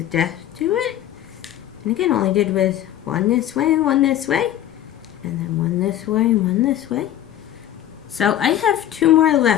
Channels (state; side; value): quieter; right; 11.9 dB